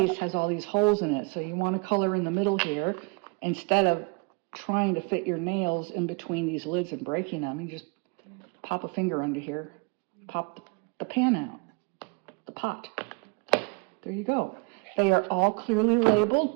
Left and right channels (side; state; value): left; quieter; 32.1 dB